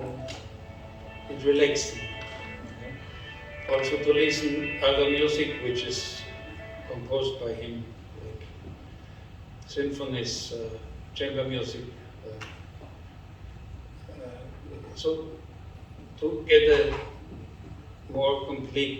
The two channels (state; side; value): identical; both; correlation 1.00